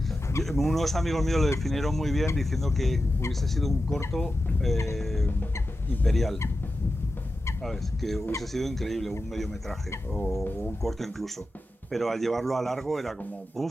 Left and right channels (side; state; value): both; normal; correlation 0.91